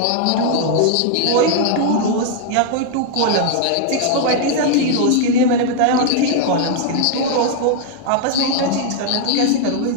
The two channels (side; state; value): both; different; correlation -0.01